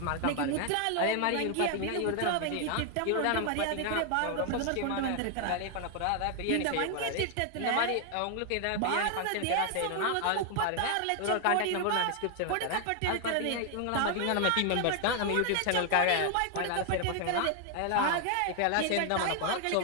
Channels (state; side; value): different; both; correlation 0.00